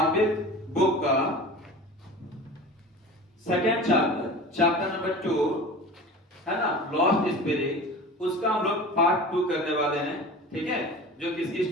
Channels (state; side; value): normal; both; correlation 0.36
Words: बुक का सेकंड चैप्टर नंबर 2 है ना, लॉस्ट स्पिरिट, उसका हम लोग पार्ट 2 करने वाले हैं। ठीक है, जो किसकी